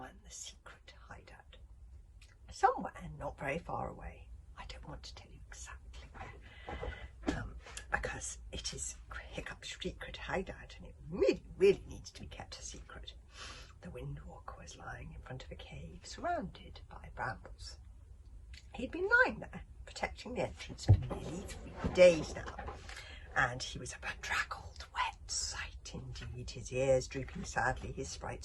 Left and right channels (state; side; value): identical; both; correlation 1.00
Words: The Secret Hideout. Somewhere not very far away, I don't want to tell you exactly where, because it is Hiccup's secret hideout and it really needs to be kept a secret. The Windwalker was lying in front of a cave surrounded by brambles. He'd been lying there, protecting the entrance for nearly 3 days now, and he was a bedraggled, wet sight indeed, his ears drooping sadly, his